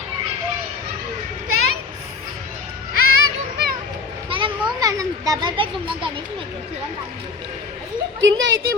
డబల్ బెడ్రూమ్ లో గణేష్ కింద అయితే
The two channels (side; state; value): right; quieter; 4.6 dB